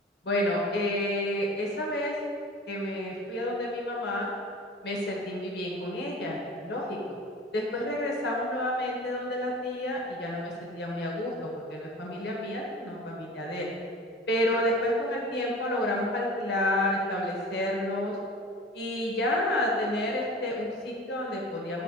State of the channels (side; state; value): both; normal; correlation 0.40